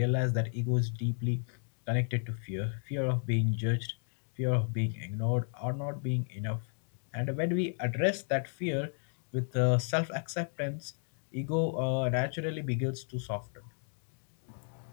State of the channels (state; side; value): silent; right; 56 dB below the other